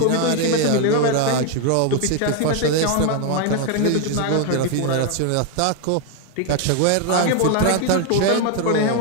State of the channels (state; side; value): different; both; correlation 0.01